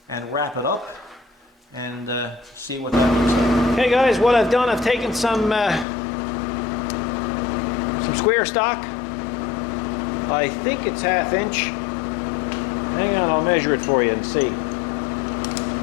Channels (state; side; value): drops out; right; at 5.9 s